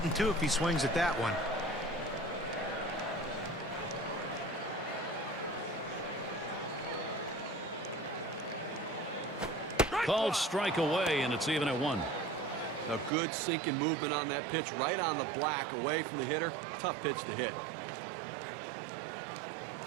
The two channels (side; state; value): left; drops out; at 13.1 s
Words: too if he swings at that one. Called strike away, and it's even at 1. A good sinking movement on that pitch, right on the black, away from the hitter. Tough pitch to hit.